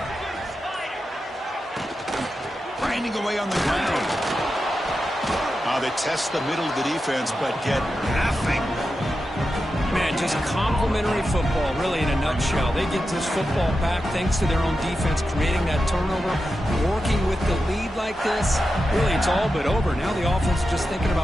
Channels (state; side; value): normal; both; correlation 0.90